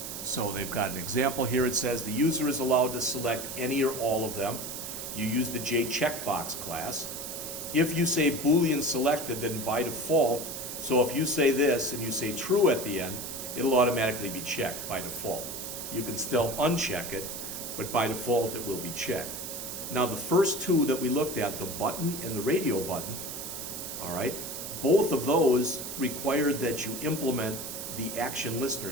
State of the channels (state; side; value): noise; right; hiss, 7 dB below the sound